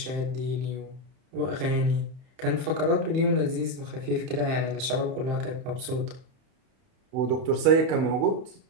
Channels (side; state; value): left; late; 31 ms